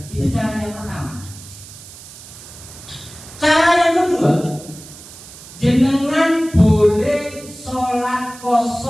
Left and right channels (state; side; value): noise; right; hiss, 17 dB below the sound